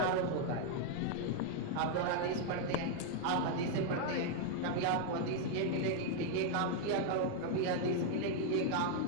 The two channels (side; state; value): both; different; correlation 0.00